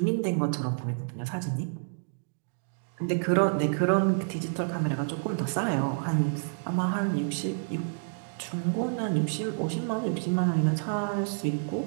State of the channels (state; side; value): silent; left; digital silence